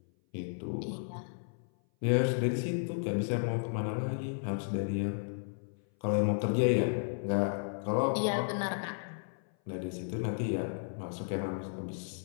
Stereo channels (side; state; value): right; silent; 55 dB below the other